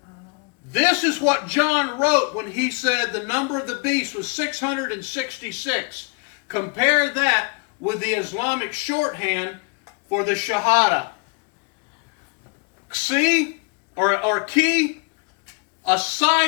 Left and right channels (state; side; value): quieter; right; 32.7 dB